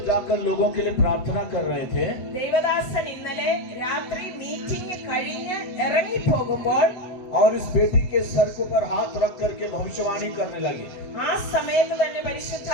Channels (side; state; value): right; late; 7.8 ms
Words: जाकर लोगों के लिए प्रार्थना कर रहे थे, ദേവദാസൻ ഇന്നലെ രാത്രി മീറ്റിംഗ് കഴിഞ്ഞ് ഇറങ്ങി പോകുമ്പോൾ और इस बेटी के सर के ऊपर हाथ रख करके भविष्यवाणी करने लगे। ആ സമയത്ത് തന്നെ